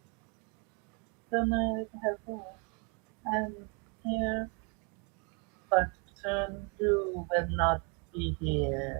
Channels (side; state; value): left; quieter; 35.0 dB